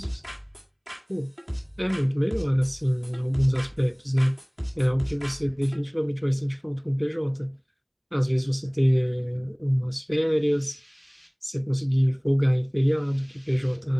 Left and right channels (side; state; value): both; identical; correlation 1.00